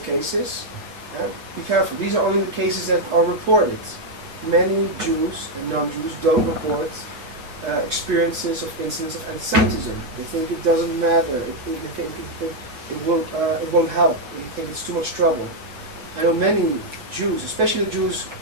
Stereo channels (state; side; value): late; left; 7.9 ms